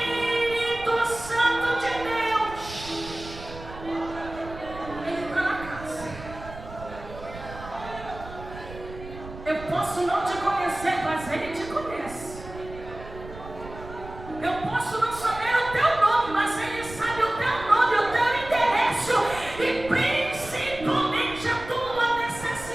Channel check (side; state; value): right; noise; rumble, 14 dB below the sound